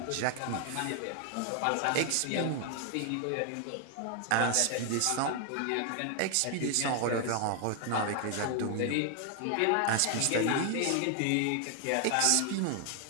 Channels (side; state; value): both; different; correlation 0.00